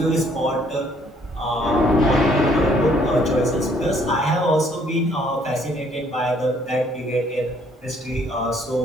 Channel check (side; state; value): both; normal; correlation 0.64